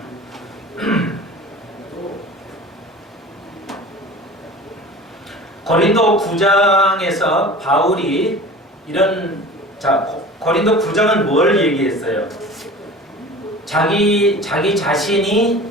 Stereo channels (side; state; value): both; normal; correlation 0.39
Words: 고린도 9장에서 바울이 고린도 9장은 뭘 얘기했어요? 자기 자신이